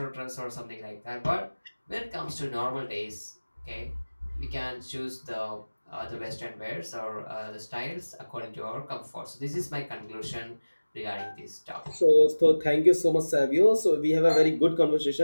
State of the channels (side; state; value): both; inverted; correlation -1.00